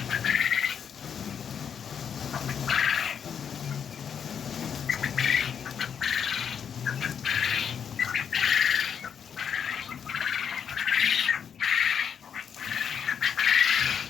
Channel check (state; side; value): quieter; right; 7.6 dB